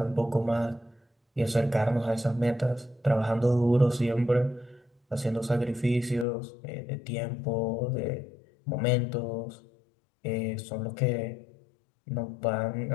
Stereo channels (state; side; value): drops out; right; at 6.2 s